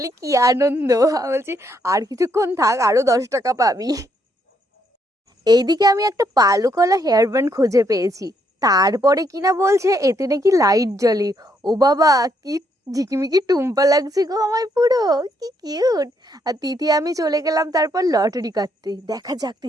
কি আনন্দ। আমি বলছি আর কিছুক্ষণ থাক, আরো 10 টাকা পাবি। এইদিকে আমি একটা পালুকলা হেয়ার ব্যান্ড খুঁজে পেয়েছি। তারপরে কিনা বলছে এতে নাকি লাইট জ্বলে। ও বাবা, কি ঝিকিমিকি টুম্পা লাগছে গো আমায় পুরো, কি কিউট। আর তিথি আমি চলে গেলাম তারপর লটারি কাটতে। দেখা যাক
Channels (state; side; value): normal; both; correlation 0.74